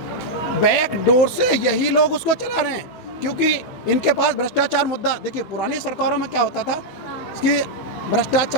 बैक डोर से यही लोग उसको चला रहे हैं, क्योंकि इनके पास भ्रष्टाचार मुद्दा, देखिए पुरानी सरकारों में क्या होता था कि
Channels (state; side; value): late; right; 16 ms